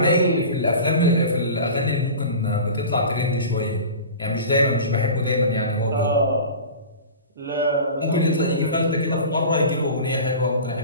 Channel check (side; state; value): both; inverted; correlation -0.35